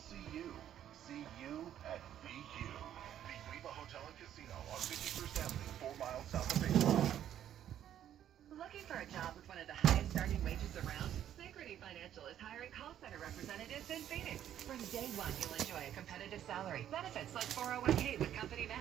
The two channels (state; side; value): quieter; left; 10.7 dB